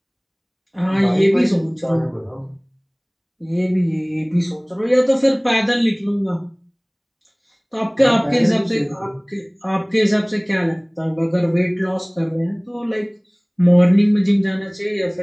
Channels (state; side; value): identical; both; correlation 1.00